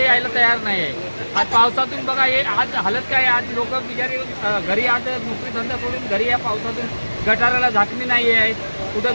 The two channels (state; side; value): inverted; both; correlation -1.00